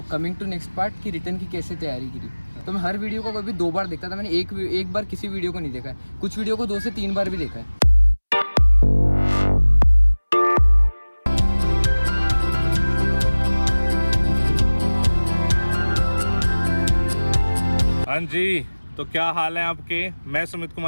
coming to next part कि रिटर्न की कैसे तैयारी करी। तो मैं हर वीडियो को कभी 2 बार देखता था। मैंने एक बार किसी वीडियो को नहीं देखा है, कुछ वीडियो को 2 से 3 बार भी देखा है। हाँ जी, तो क्या हाल है आपके? मैं सुमित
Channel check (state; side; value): inverted; both; correlation -1.00